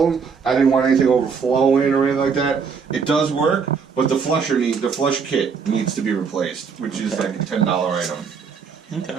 I didn't want anything overflowing or anything like that. It does work, but the flush kit needs to be replaced, which is like a $10 item.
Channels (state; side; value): quieter; left; 5.9 dB